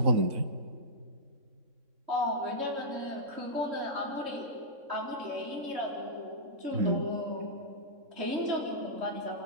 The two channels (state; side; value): late; left; 3.6 ms